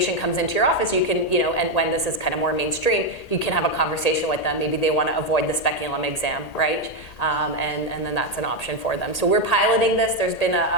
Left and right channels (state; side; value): late; right; 1.8 ms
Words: comes into your office, you can, and when this is kind of more mainstream, you can have a conversation with them. Maybe they want to avoid the speculum exam, right? And then that's an option for them. So we're piloting this. There's been